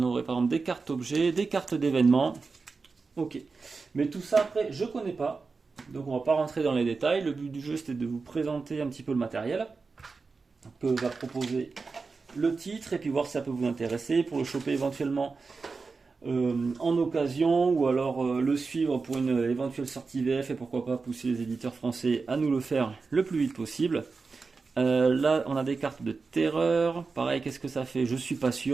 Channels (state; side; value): quieter; left; 4.4 dB